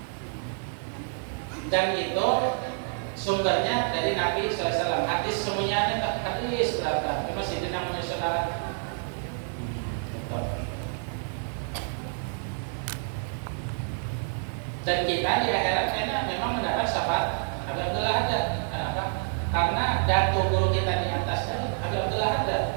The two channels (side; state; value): left; silent; 59 dB below the other